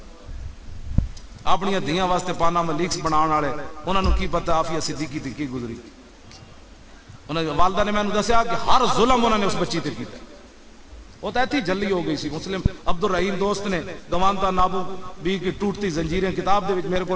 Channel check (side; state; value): both; identical; correlation 1.00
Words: اپنی دھیاں واسطے پاناما لیکس بناؤں والے انہوں نے کی پتہ عافیہ صدیقی تھی کی گزری۔ والدہ نے میں نے دسیا کہ ہر ظلم انہوں نے اس بچی تے کیتا۔ وہ تو ایتھی جلی ہو گئی سی۔ مسلم عبد الرحیم دوست نے گوانتا نابو بی کی ٹوٹتی زنجیریں کتاب دے وچ میرے کو